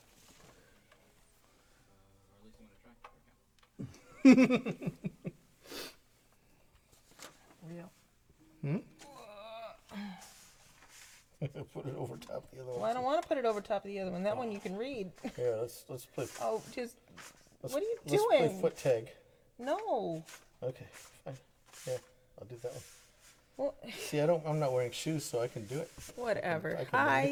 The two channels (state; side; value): identical; both; correlation 1.00